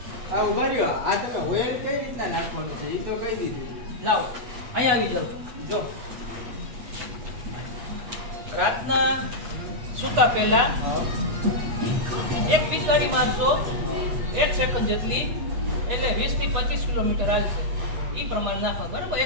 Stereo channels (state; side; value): late; left; 8.4 ms